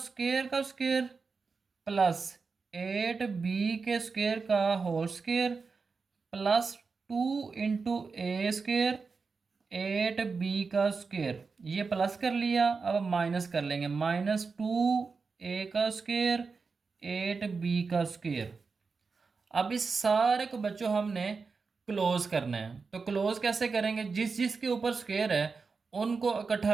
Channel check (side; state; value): left; quieter; 4.7 dB